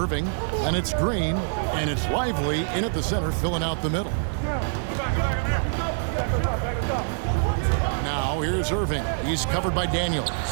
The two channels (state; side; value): silent; left; 62 dB below the other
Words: And it's Green. And it's Lively in at the center, filling out the middle. Now here's Irving. He's covered by Daniels.